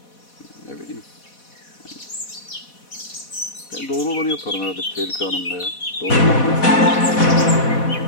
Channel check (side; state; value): right; late; 4.1 ms